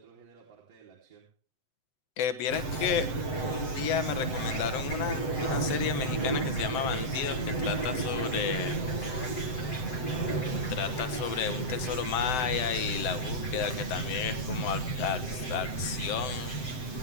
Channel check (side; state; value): right; late; 7.8 ms